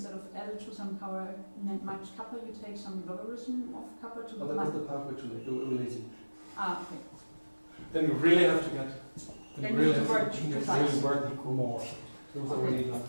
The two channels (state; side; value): inverted; both; correlation -1.00